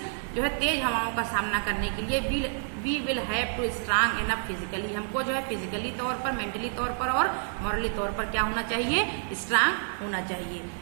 जो है तेज हवाओं का सामना करने के लिए we will have to strong enough physically, हमको जो है फिजिकली तौर पर, मेंटली तौर पर और मॉरली तौर पर क्या होना चाहिए, स्ट्रांग होना चाहिए।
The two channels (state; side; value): silent; left; 59 dB below the other